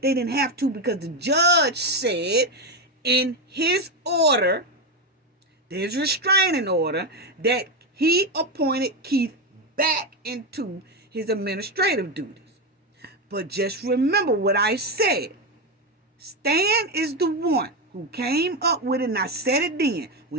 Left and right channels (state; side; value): normal; both; correlation 0.11